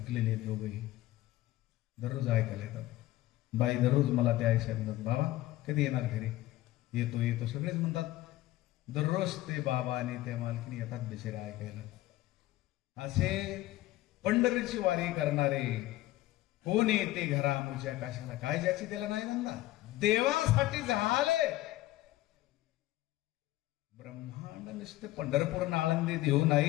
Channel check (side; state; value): right; quieter; 16.3 dB